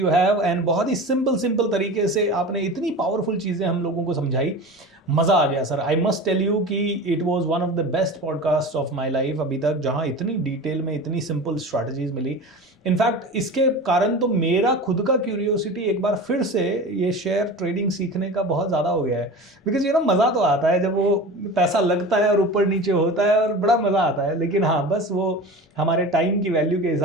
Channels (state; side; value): normal; both; correlation 0.33